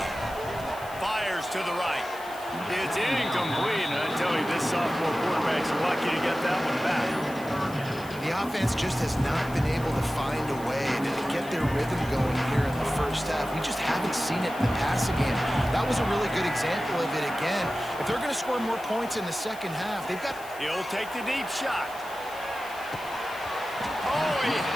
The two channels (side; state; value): left; noise; hiss, 19 dB below the sound